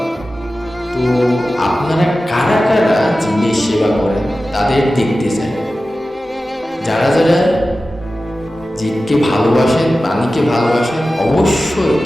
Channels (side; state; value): both; normal; correlation 0.95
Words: তো আপনারা কারা কারা জীবের সেবা করেন তাদের দেখতে চাই। যারা যারা জীবকে ভালোবাসেন, প্রাণীকে ভালোবাসেন, অবশ্যই